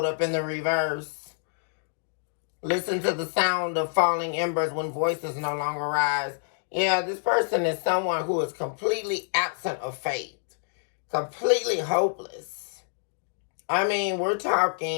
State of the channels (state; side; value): silent; right; digital silence